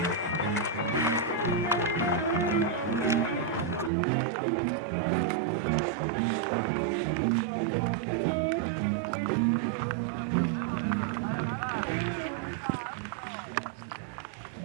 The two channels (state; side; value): drops out; left; at 3.9 s